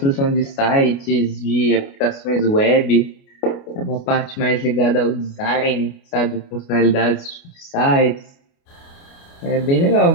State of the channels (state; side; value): late; right; 29 ms